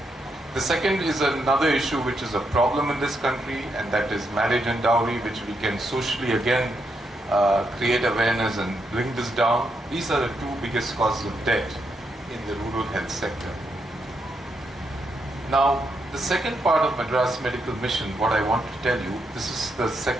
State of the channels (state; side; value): normal; both; correlation 0.80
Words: The second is another issue which is a problem in this country, and that is marriage and dowry, which we can socially again create awareness and bring this down. These are the two biggest causes of debt in the rural health sector. Now, the second part of Madras Medical Mission, what I want to tell you, this is the